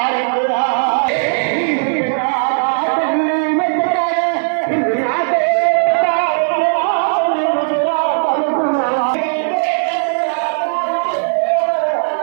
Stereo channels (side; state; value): left; silent; digital silence